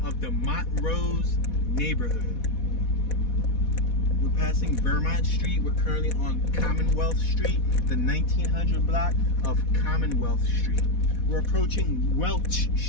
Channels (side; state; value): right; late; 4.1 ms